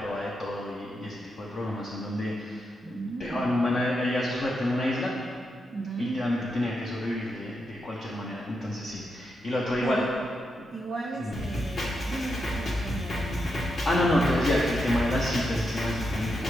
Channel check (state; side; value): normal; both; correlation 0.84